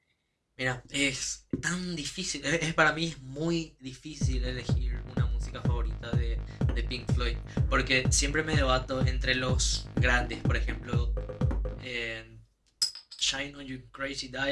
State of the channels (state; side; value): identical; both; correlation 1.00